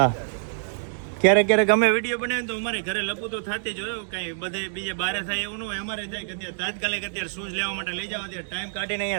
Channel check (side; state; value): left; silent; digital silence